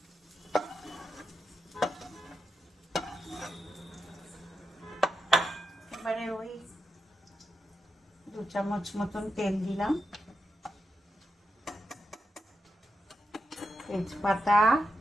এবারে ওই 2 চামচ মতন তেল দিলাম। তেজপাতা,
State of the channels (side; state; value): both; normal; correlation 0.87